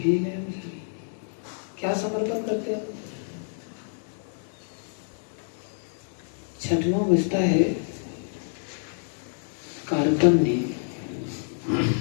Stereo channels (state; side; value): silent; right; 59 dB below the other